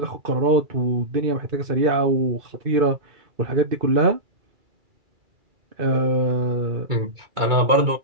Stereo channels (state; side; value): late; left; 2.2 ms